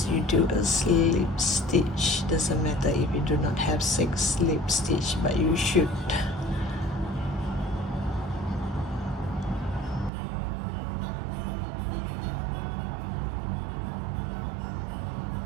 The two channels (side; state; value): left; drops out; at 10.1 s